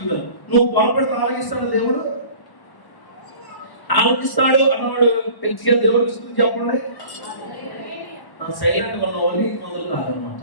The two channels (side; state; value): right; late; 1.1 ms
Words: నువ్వు పొరపెడితే ఆలకిస్తాడు దేవుడు? ఆలోచిస్తాడు అన్నవాడు పెంచిగా దేవుడికి స్తుతి చెప్పండి. సైలెంట్ ఉన్నవాళ్ళు నీతిమంతులు కాదనమాట.